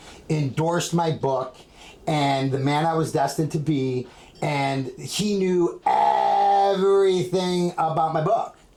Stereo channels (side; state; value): both; identical; correlation 1.00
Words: endorsed my book, and The Man I Was Destined to Be, and he knew everything about my book.